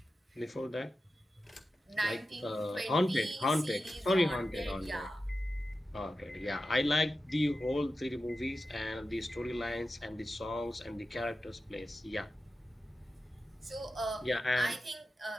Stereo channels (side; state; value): both; normal; correlation 0.92